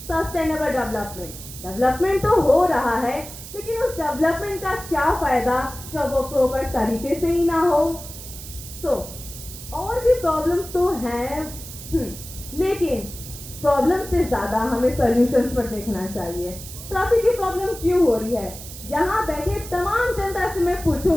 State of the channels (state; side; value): noise; right; hiss, 13 dB below the sound